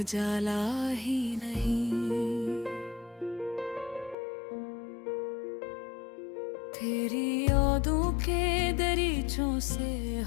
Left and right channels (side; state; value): right; drops out; at 4.2 s